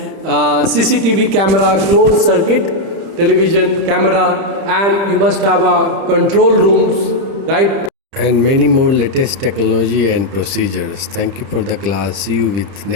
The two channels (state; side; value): late; left; 30 ms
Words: CCTV camera, closed circuit television camera, and you must have a control rooms, right? And many more latest technology and procedures. Thank you for the class. See you with